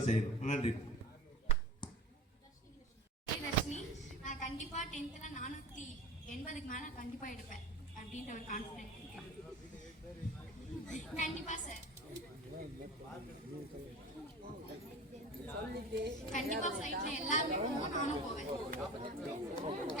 செய்யணும். நன்றி. நான் கண்டிப்பா 10th 480க்கு மேல கண்டிப்பா எடுப்பேன் அப்படின்ற ஒரு கான்ஃபிடன்ஸ் இருக்கு. கண்டிப்பா சார், கண்டிப்பா ஃப்ளைட்ல எல்லாருமே போவோம், நானும் போவேன்.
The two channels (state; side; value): normal; both; correlation 0.36